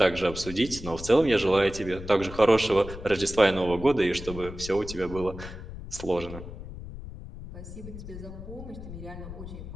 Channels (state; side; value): noise; left; rumble, 11 dB below the sound